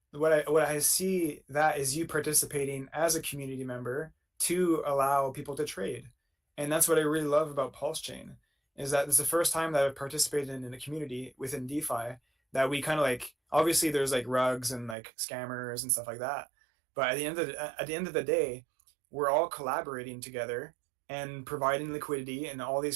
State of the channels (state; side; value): drops out; left; at 15.0 s